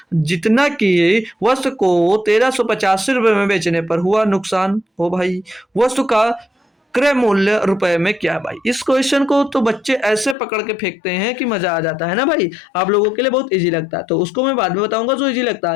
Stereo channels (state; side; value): drops out; right; at 10.4 s